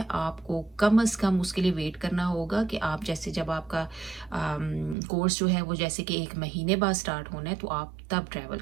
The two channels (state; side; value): drops out; left; at 5.0 s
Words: आपको कम से कम उसके लिए वेट करना होगा कि आप जैसे जब आपका कोर्स जो है वो जैसे कि 1 महीने बाद स्टार्ट होना है, तो आप तब ट्रैवल